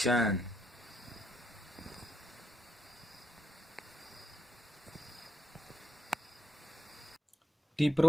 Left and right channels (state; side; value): normal; both; correlation 0.81